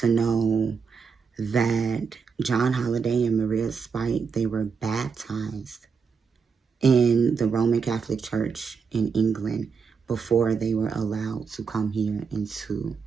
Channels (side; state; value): left; quieter; 5.7 dB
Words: know that John Holliday and Maria Sprite, they were baptized in the Roman Catholic Church in England before they were allowed to come here into